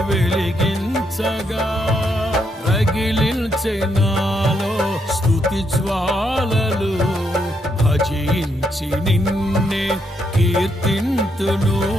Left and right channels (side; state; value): both; normal; correlation 0.77